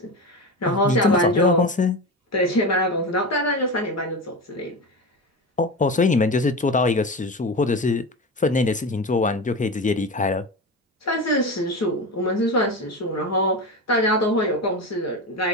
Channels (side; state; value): both; normal; correlation 0.24